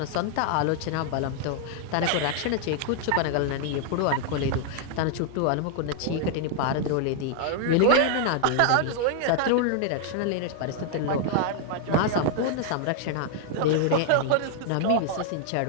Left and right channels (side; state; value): both; different; correlation 0.00